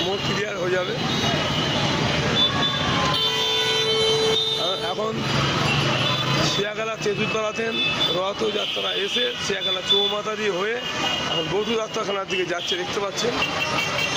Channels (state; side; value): identical; both; correlation 1.00